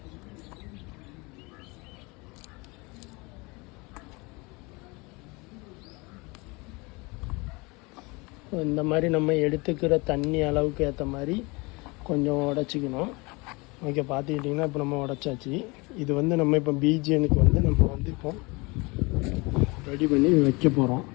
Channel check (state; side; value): quieter; right; 26.4 dB